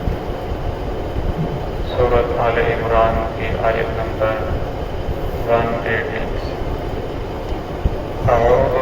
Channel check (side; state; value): both; identical; correlation 1.00